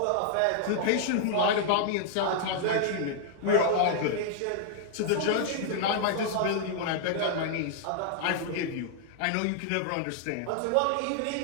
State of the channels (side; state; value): both; different; correlation -0.01